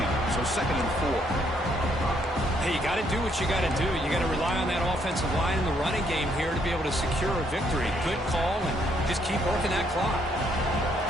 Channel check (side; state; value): both; normal; correlation 0.71